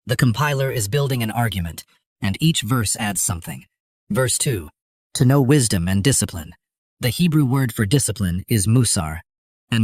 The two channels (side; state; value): both; identical; correlation 1.00